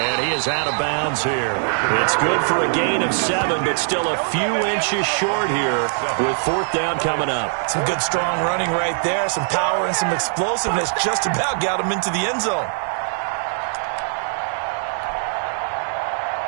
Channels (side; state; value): left; silent; 65 dB below the other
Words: he is out of bounds here. It's good for a gain of 7, but still a few inches short here with 4th down coming up. Some good strong running right there. Some power and some explosiveness just about got him into the end zone.